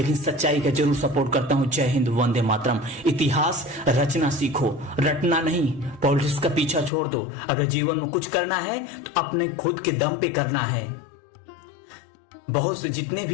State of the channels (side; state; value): right; drops out; at 6.9 s